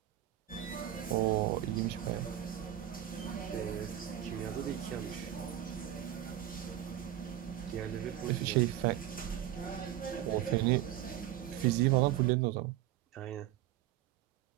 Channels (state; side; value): quieter; left; 12.5 dB